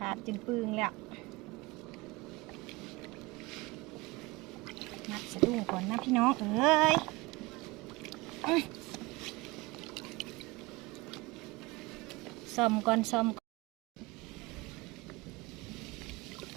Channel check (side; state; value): left; quieter; 23.0 dB